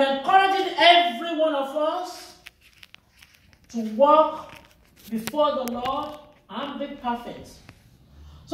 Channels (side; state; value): both; identical; correlation 1.00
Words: encouraging every one of us to walk before the Lord and be perfect,